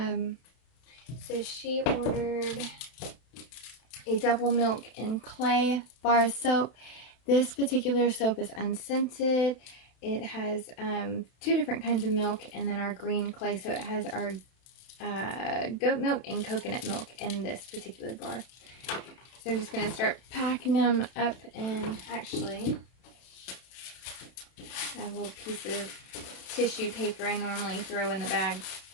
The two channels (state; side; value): late; right; 32 ms